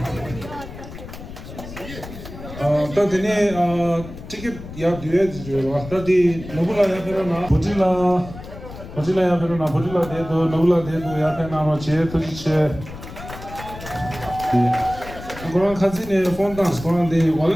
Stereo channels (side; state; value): left; noise; rumble, 13 dB below the sound